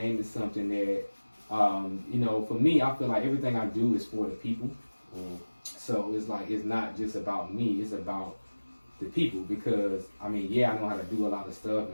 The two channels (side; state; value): both; inverted; correlation -1.00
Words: it something that You know, for me, I feel like everything I do is for the people. Mm. So it's like, it's not just about me, it's about the people. Because, I mean, yeah, I know how to do a lot of stuff,